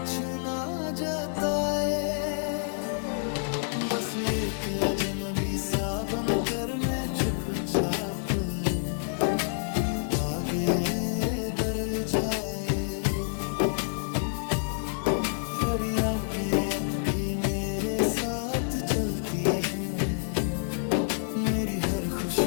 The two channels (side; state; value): right; silent; digital silence